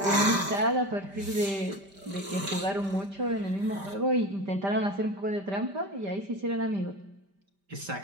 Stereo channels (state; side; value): late; left; 5.1 ms